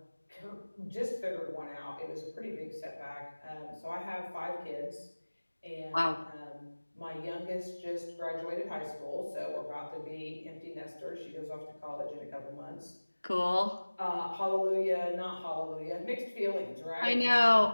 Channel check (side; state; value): both; inverted; correlation -1.00